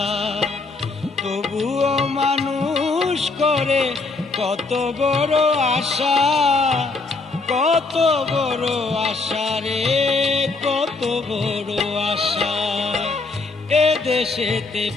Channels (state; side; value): quieter; right; 3.8 dB